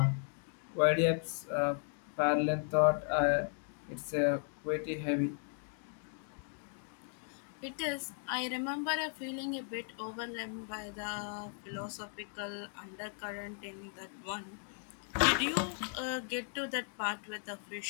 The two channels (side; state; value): right; silent; 54 dB below the other